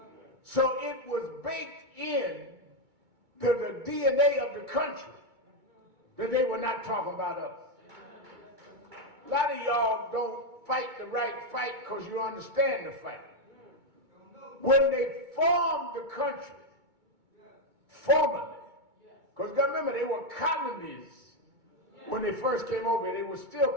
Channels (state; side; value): late; left; 2.2 ms